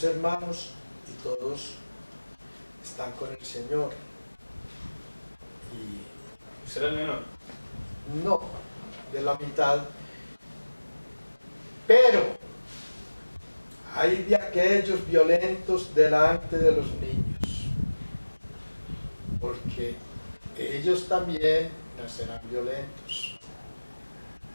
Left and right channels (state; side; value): inverted; both; correlation -1.00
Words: hermanos y todos están con el Señor. Y ¿Usted era el menor? no, de la mitad. Pero hay de aquellos violentos delante de los niños, porque ellos también nacerán violentos,